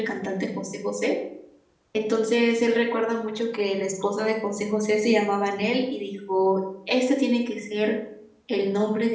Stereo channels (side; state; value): both; identical; correlation 1.00